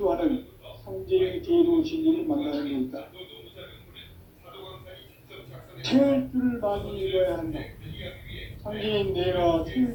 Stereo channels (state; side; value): identical; both; correlation 1.00